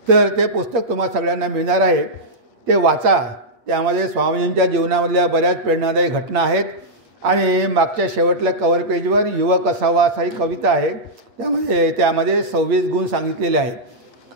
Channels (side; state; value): left; late; 8.6 ms